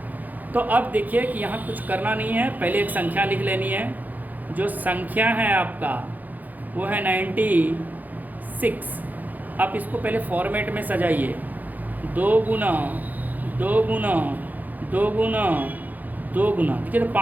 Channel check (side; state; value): left; late; 0.082 ms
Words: तो अब देखिए कि यहाँ कुछ करना नहीं है, पहले एक संख्या लिख लेनी है। जो संख्या है आपका वो है 96। आप इसको पहले फॉर्मेट में सजाइए, 2 गुना 2 गुना 2 गुना 2 गुना, देखिए तो